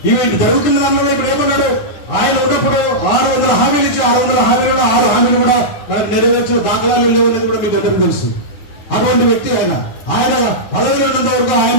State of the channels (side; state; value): right; late; 9.8 ms